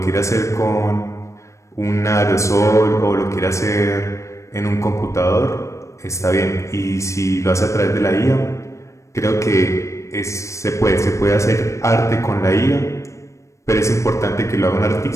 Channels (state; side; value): late; right; 0.15 ms